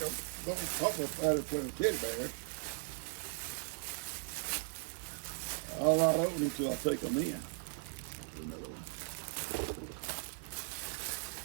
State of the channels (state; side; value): silent; left; 52 dB below the other